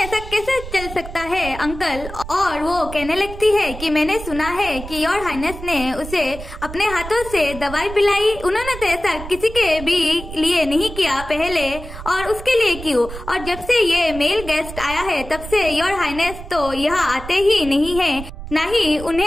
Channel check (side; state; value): right; noise; rumble, 12 dB below the sound